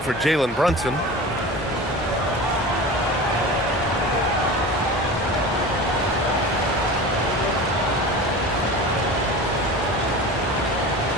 for Jalen Brunson.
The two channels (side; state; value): both; normal; correlation 0.33